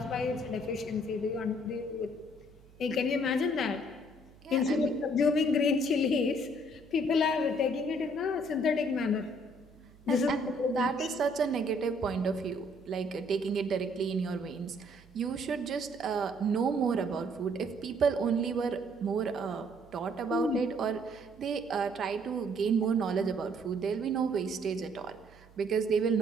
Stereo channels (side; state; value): right; noise; hum, 25 dB below the sound